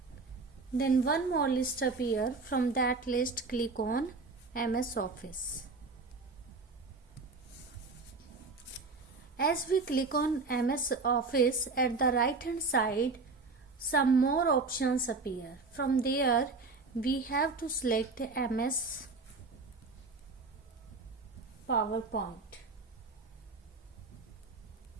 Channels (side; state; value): left; quieter; 4.0 dB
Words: Then one more list appear. From that list, click on MS Office. As we click on MS Office, at the right hand side, some more options appear. From there, we have to select MS PowerPoint.